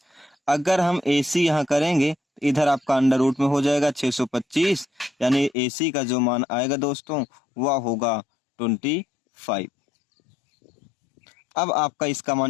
अगर हम ए सी यहाँ करेंगे तो इधर आपका अंडर रूट में हो जाएगा 625, यानी ए सी का जो मान आएगा दोस्तों वह होगा 25। अब आपका इसका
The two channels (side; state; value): right; drops out; at 5.6 s